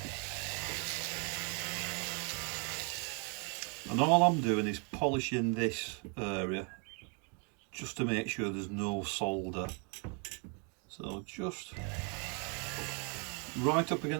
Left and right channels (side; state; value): left; quieter; 36.5 dB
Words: And all I'm doing is polishing this area just to make sure there's no solder. So just right up